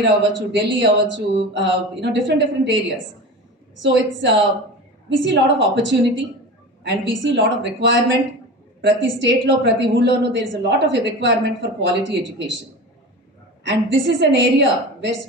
అవ్వచ్చు, ఢిల్లీ అవ్వచ్చు, different areas. So it's we see lot of opportunity and we see lot of requirement. ప్రతి స్టేట్లో, ప్రతి ఊళ్ళోనూ there is a lot of requirement for quality education. And this is an area where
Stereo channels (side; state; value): both; normal; correlation 0.31